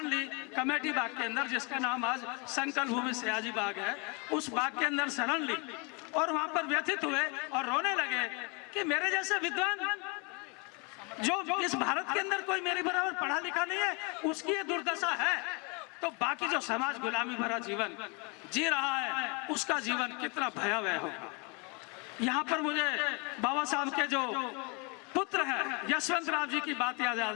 ली कमेटी बाग के अंदर, जिसका नाम आज संकल्प भूमि सयाजी बाग है। उस बाग के अंदर शरण ली और वहां पर व्यथित हुए और रोने लगे कि मेरे जैसे विद्वान जो इस भारत के अंदर कोई मेरे बराबर पढ़ा लिखा नहीं है, उसकी ये दुर्दशा है, तो बाकी जो समाज गुलामी भरा जीवन जी रहा है उसका जीवन कितना भयावह होगा। यहाँ पर मुझे बाबा साहब के जो पुत्र हैं यशवंत राव जी की बात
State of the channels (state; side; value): quieter; right; 32.0 dB